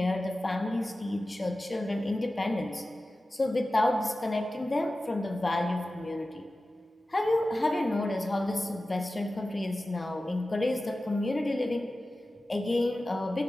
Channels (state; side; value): normal; both; correlation 0.95